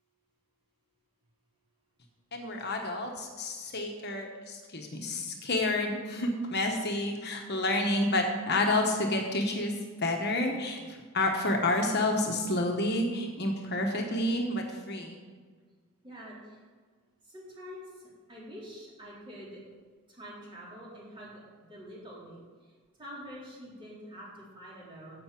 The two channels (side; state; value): both; normal; correlation 0.20